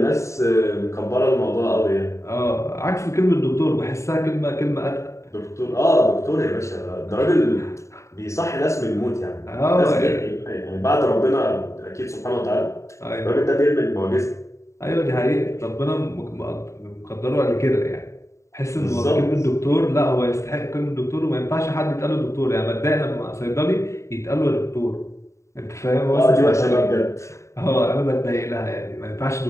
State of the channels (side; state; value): right; late; 0.14 ms